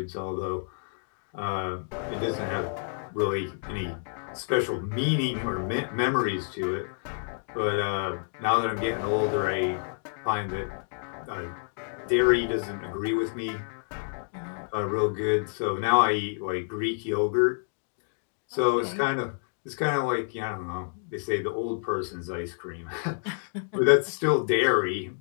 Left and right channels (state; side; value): silent; right; digital silence